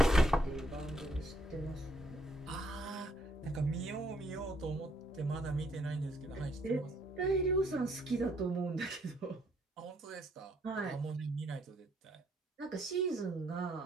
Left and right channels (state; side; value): normal; both; correlation 0.70